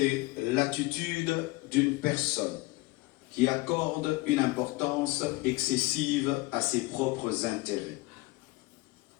l'attitude d'une personne qui accorde une importance excessive à ses propres intérêts.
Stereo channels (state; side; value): quieter; right; 22.3 dB